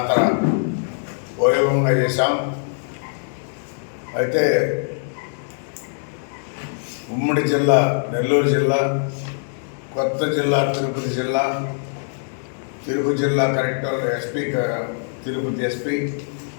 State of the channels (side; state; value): right; silent; digital silence